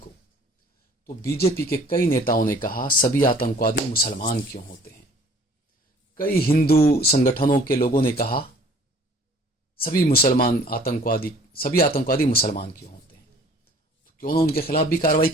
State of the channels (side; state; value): both; normal; correlation 0.53